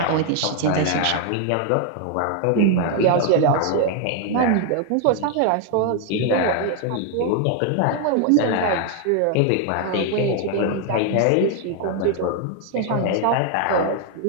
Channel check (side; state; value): both; different; correlation 0.00